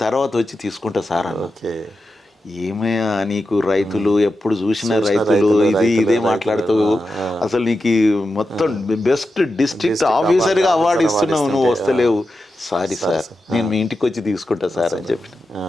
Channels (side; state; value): both; normal; correlation 0.90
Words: తర్వాత వచ్చి తీసుకుంటా సార్ అన్న. ఏమయ్యా నీకు రైతులు ఎప్పుడు చూసిన రైతులు ఇదే మాట్లాడుతావు, అసలు నీకు మొత్తం బెస్ట్ డిస్ట్రిక్ట్ ఆఫీసర్గా అవార్డు ఇస్తున్నావు, నువ్వు వస్తలేవు. సారీ సార్ నేను మీ ఇంటికి వచ్చి తీసుకుంటా సార్ అని చెప్పిన.